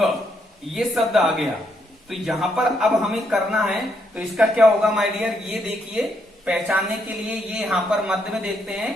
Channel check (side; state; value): both; normal; correlation 0.76